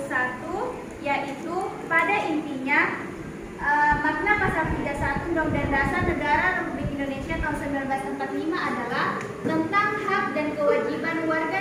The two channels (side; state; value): both; identical; correlation 1.00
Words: yaitu pada intinya makna pasal 31 Undang-Undang Dasar Negara Republik Indonesia tahun 1945 adalah tentang hak dan kewajiban warga